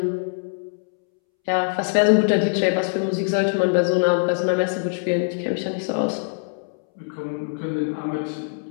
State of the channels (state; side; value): silent; right; 64 dB below the other